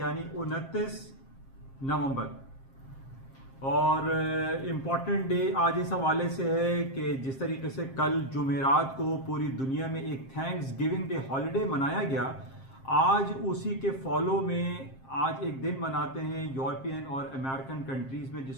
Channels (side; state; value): right; late; 7.5 ms